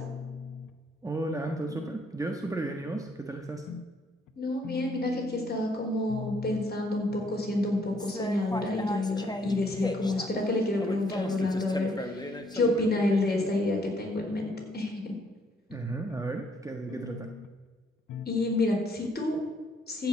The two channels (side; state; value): both; normal; correlation 0.68